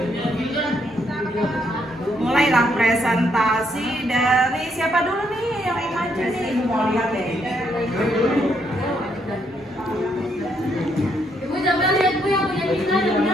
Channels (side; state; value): both; normal; correlation 0.74